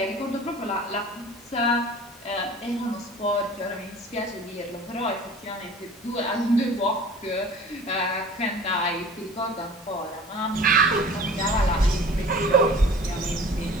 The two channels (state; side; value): normal; both; correlation 0.44